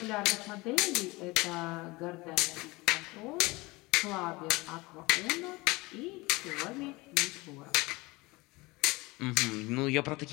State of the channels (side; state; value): right; quieter; 23.0 dB